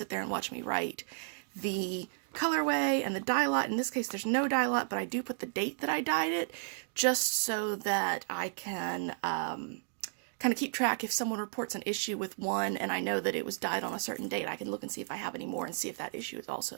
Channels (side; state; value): left; silent; digital silence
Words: there and watch me write the colorway and the dye lot. In this case, there's no dye lot, but I do put the date that I dyed it, just so that I can kind of keep track. If someone reports an issue with one and I know that it was dyed on a certain date, I can look and see if I have any more and see if that issue is